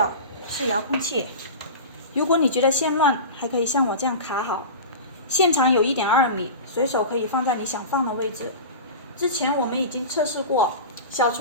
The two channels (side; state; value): both; inverted; correlation -0.30